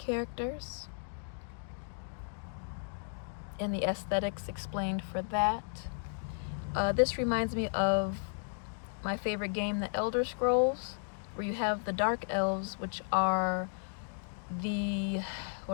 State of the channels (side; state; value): right; silent; digital silence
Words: characters and the aesthetics explained for that. This reminds me of my favorite game, The Elder Scrolls, where you have the Dark Elves, which are the,